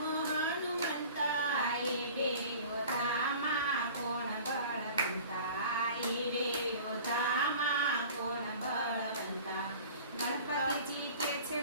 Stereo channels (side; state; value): both; inverted; correlation -0.43